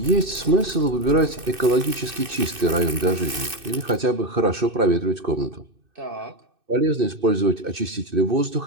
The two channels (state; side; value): late; left; 2.6 ms